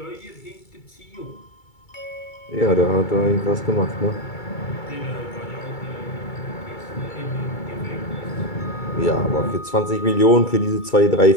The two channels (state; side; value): late; right; 2.3 ms